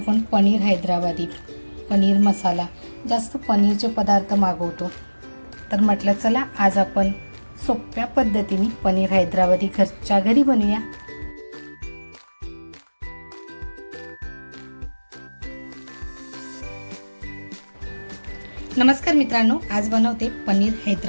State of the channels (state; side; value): inverted; both; correlation -1.00